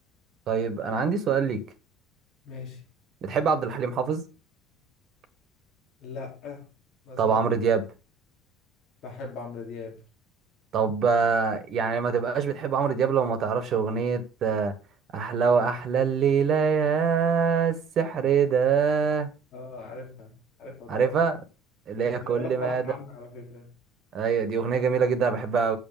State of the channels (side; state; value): left; quieter; 5.7 dB